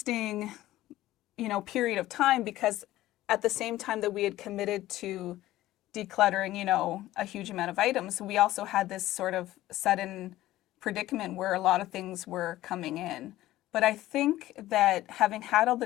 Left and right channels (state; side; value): quieter; right; 15.5 dB